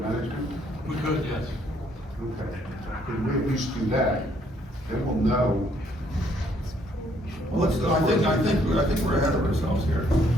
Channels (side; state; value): both; normal; correlation 0.67